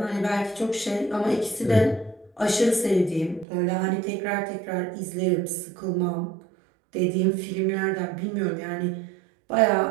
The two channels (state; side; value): drops out; left; at 3.5 s